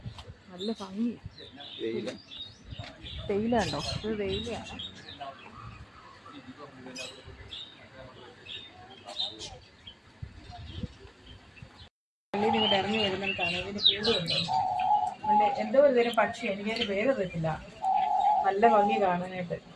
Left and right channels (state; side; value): identical; both; correlation 1.00